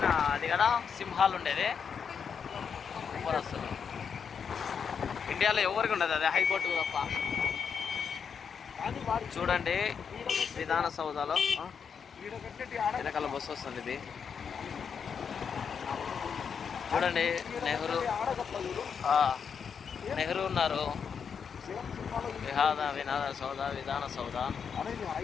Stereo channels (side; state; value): right; quieter; 6.7 dB